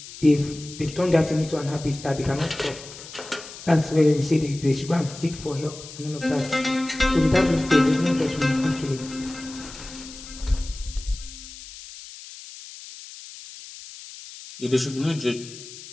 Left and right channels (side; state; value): left; noise; hiss, 15 dB below the sound